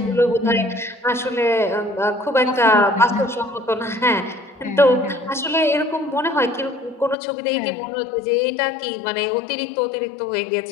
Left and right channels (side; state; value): right; drops out; at 7.2 s